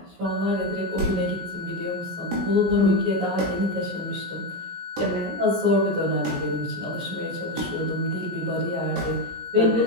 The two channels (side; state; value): left; late; 17 ms